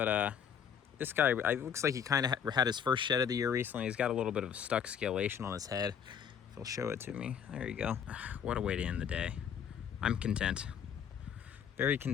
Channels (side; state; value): right; quieter; 8.0 dB